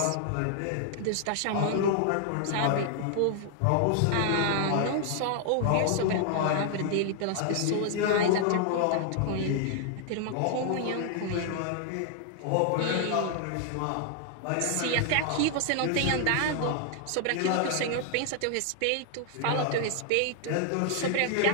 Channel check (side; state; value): both; different; correlation 0.00